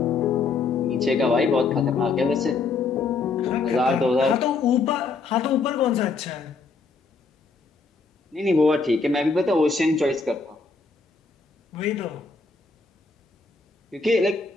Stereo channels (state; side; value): quieter; right; 4.3 dB